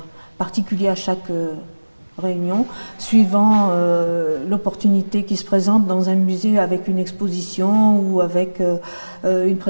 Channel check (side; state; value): both; inverted; correlation -1.00